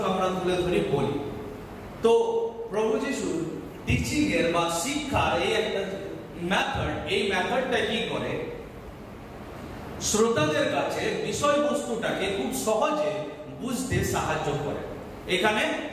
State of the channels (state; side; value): identical; both; correlation 1.00